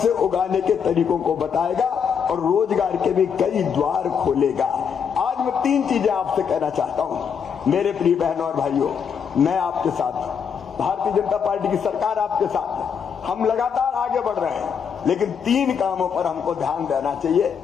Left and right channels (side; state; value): right; quieter; 7.0 dB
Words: उगाने के तरीकों को बताएगा और रोजगार के भी कई द्वार खोलेगा। आज मैं 3 चीजें आपसे कहना चाहता हूं मेरे प्रिय बहनों और भाइयों। मैं आपके साथ, भारतीय जनता पार्टी की सरकार आपके साथ है, हम लगातार आगे बढ़ रहे हैं, लेकिन 3 कामों पर हमको ध्यान देना चाहिए।